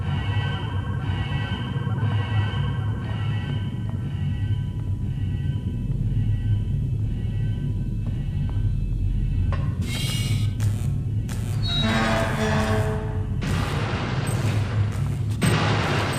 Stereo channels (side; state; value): both; identical; correlation 1.00